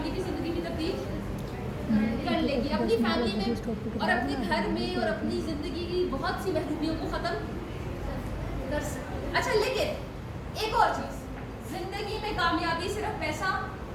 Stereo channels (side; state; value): both; identical; correlation 1.00